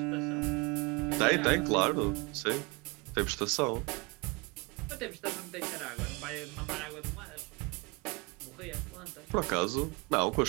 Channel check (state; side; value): quieter; left; 28.3 dB